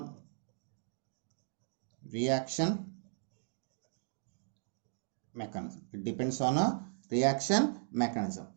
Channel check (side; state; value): left; silent; digital silence